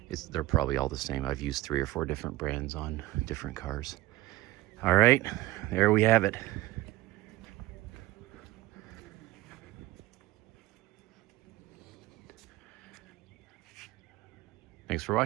they're probably all the same. I've used 3 or 4 different brands on different cars. All right, there we have it. Thanks for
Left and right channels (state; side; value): quieter; left; 17.7 dB